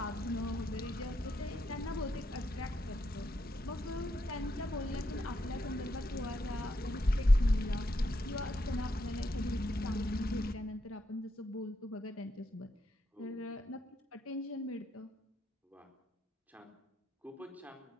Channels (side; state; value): both; normal; correlation 0.81